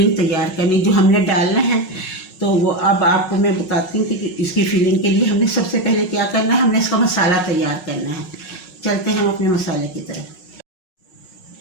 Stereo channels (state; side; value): late; right; 5.4 ms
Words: तैयार करनी, जो हमने डालना है। तो वो अब आपको मैं बताती हूँ कि इसकी फिलिंग के लिए हमने सबसे पहले क्या करना है, हमने इसका मसाला तैयार करना है। चलते हैं हम अपने मसाले की तरफ।